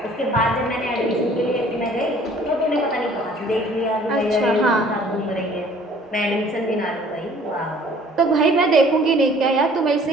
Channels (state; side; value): normal; both; correlation 0.54